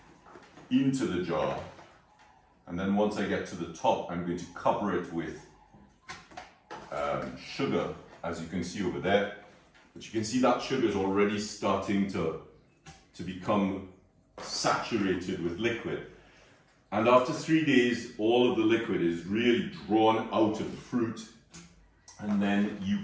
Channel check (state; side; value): identical; both; correlation 1.00